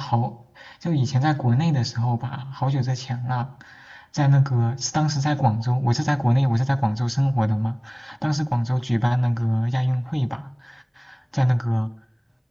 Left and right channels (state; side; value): identical; both; correlation 1.00